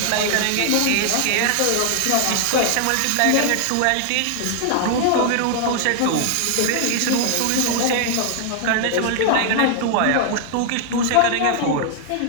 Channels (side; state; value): both; different; correlation 0.00